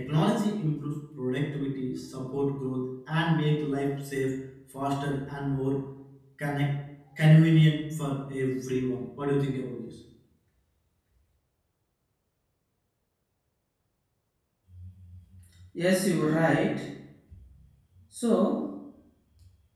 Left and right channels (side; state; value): both; identical; correlation 1.00